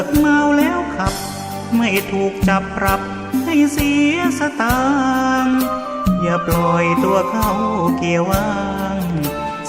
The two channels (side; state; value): both; identical; correlation 1.00